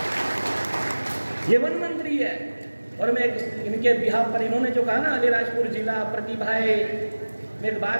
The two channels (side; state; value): both; inverted; correlation -1.00